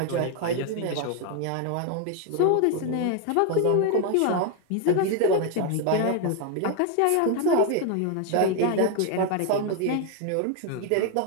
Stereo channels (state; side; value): different; both; correlation 0.01